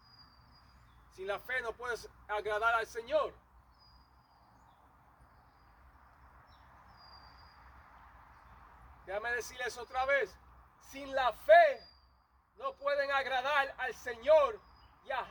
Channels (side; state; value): both; identical; correlation 1.00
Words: Sin la fe no puedes agradar al Señor. Déjame decirles otra vez. Sin la fe no pueden agradar al Señor